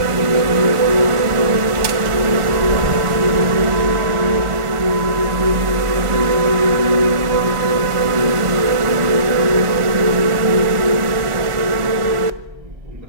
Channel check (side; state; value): left; late; 1.4 ms